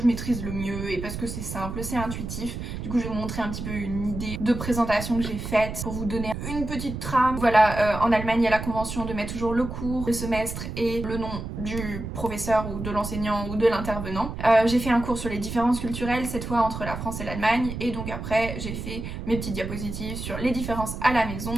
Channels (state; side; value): noise; right; rumble, 7 dB below the sound